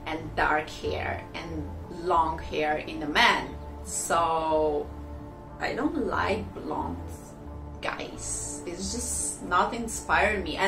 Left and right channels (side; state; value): both; identical; correlation 1.00